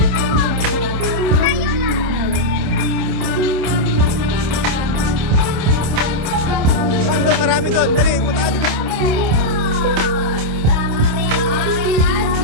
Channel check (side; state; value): left; late; 27 ms